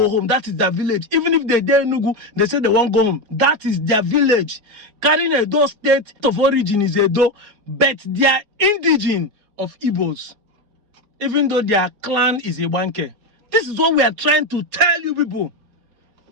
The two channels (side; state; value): left; late; 4.9 ms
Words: home. That is their village. Even if they dare Nugu, they say they won't go home. That is their village. Carrying Edo state of origin is Edo, but they are indigenous of Igbos. Even though their clan is Iwanke. This is what we are trying to tell you people.